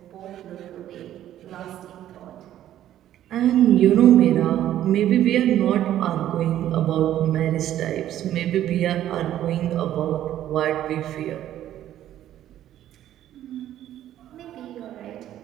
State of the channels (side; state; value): left; quieter; 12.1 dB